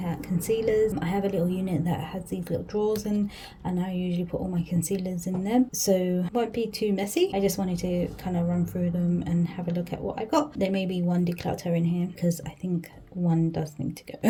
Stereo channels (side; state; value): both; identical; correlation 1.00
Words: at concealers. I have a little unit that has these little drawers in, and I usually put all my concealers in them, so it won't be too messy. I just wanted to kind of run through them and have a look at what I got. There may be one declutter in here because I think one does need to go